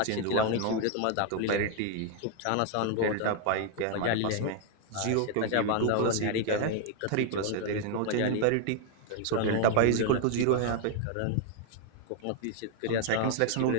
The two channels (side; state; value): both; different; correlation 0.00